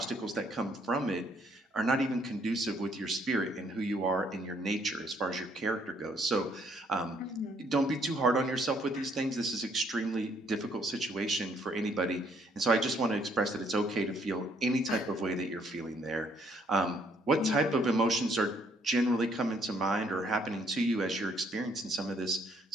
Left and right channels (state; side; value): normal; both; correlation 0.66